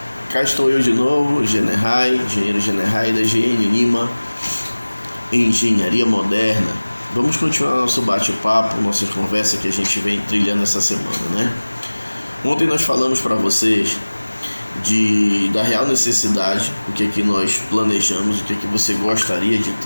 cá estou eu de novo, engenheiro Generai da GN Lima, Engenharia Moderna. Vamos continuar nosso bate-papo, nossa conversa que a gente vem trilhando essa semana, né? Ontem nós falamos para vocês da real necessidade, o que é que nós planejamos, o que é que você gostaria de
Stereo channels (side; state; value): both; inverted; correlation -1.00